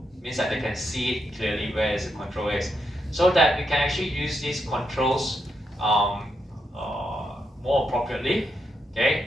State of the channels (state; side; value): normal; both; correlation 0.82